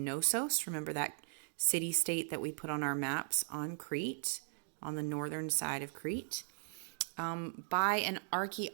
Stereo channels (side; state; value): left; silent; digital silence